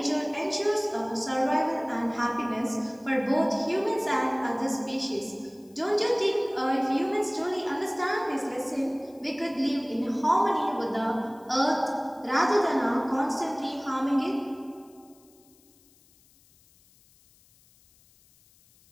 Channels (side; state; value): left; noise; hiss, 30 dB below the sound